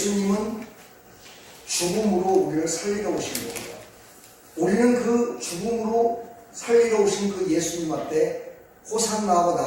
죽음으로 우리를 살리러 오신 거고요. 우리는 그 죽음으로 살리러 오신 그 예수님 앞에 호산나하고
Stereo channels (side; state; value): both; identical; correlation 1.00